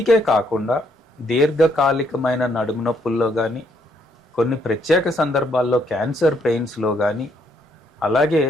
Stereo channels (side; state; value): both; normal; correlation 0.71